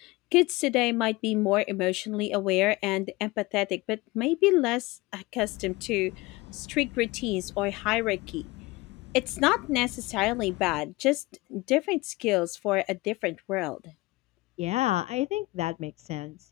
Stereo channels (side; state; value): right; quieter; 21.6 dB